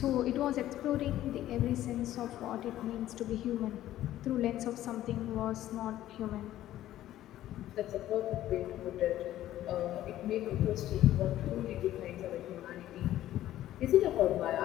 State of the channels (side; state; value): right; quieter; 13.5 dB